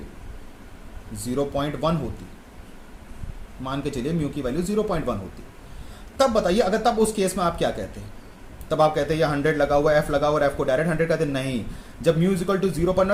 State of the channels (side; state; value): both; identical; correlation 1.00